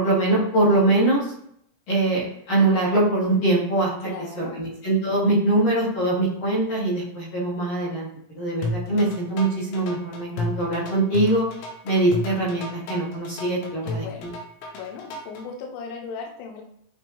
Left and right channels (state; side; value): late; right; 17 ms